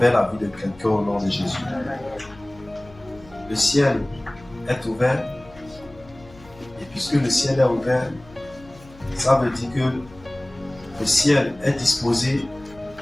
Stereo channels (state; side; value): noise; left; hum, 23 dB below the sound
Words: la vie de quelqu'un au nom de Jésus. Le ciel est ouvert, et puisque le ciel est ouvert, ça veut dire que le ciel est disposé